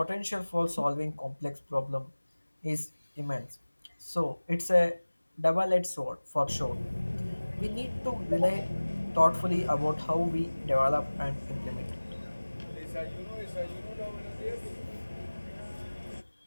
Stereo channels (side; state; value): both; inverted; correlation -1.00